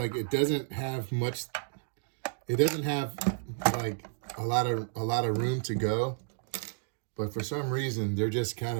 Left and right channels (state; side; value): silent; left; digital silence